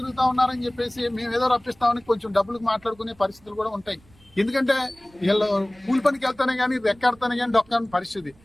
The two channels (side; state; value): right; noise; rumble, 29 dB below the sound